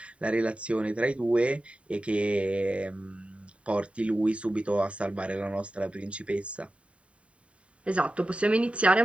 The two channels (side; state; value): left; late; 0.063 ms